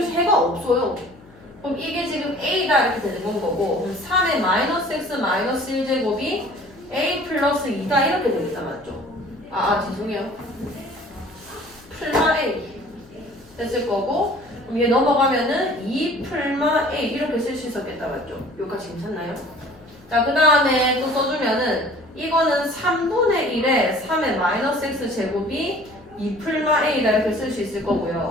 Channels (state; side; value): noise; left; hum, 26 dB below the sound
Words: 해가 없어요. 그럼 이게 지금 a다 이렇게 되는 건 거고 3의 마이너스 x 마이너스 1제곱이 a 플러스 2다 이렇게 되겠다 맞죠? 죄송해요. 풀마 a 됐을 거고 그럼 얘 넘어가면은 2 풀마 a 이렇게 쓸 수 있었겠다 맞죠? 여기까지 괜찮나요? 자 그 다음에 또 써주면은 이거는 3분의 1에 3의 마이너스 x 제곱이 2 풀마 a다 이렇게 쓸 수 있을